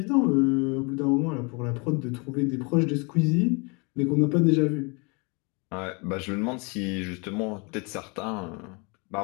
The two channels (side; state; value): right; quieter; 31.0 dB